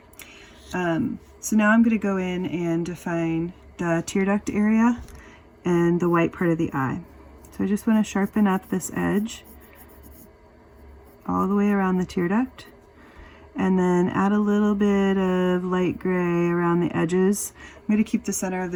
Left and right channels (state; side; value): identical; both; correlation 1.00